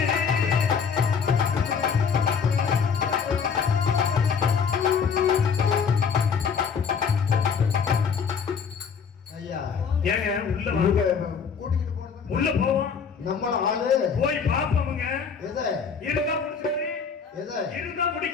ஏங்க உள்ள போவோம். நம்மள ஆளு போய் பாப்போமுங்க. எதை இருந்தா முடிக்கிறேன். எதை இருந்தா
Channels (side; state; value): right; quieter; 6.3 dB